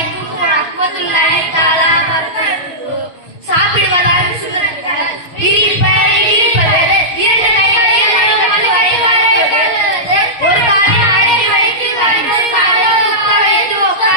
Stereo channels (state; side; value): late; right; 6.3 ms